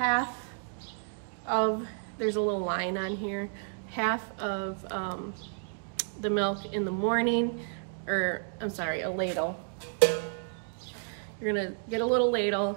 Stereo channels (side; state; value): left; silent; digital silence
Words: of, there's a little line on here, half of the milk in the morning, or I'm sorry, a ladle. You're gonna get a little